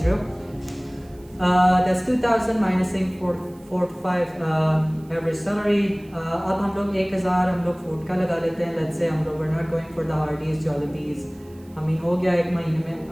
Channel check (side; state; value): right; noise; hiss, 29 dB below the sound